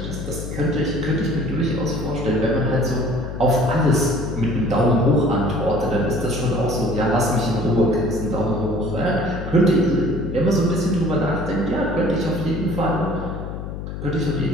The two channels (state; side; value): noise; left; hum, 7 dB below the sound